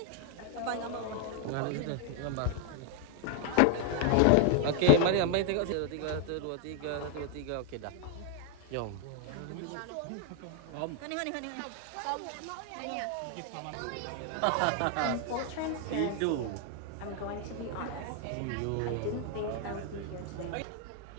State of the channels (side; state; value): both; different; correlation 0.00